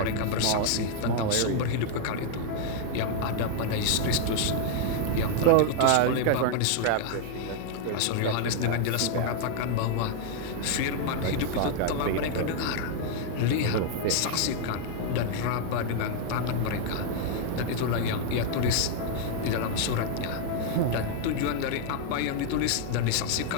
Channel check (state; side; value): different; both; correlation 0.00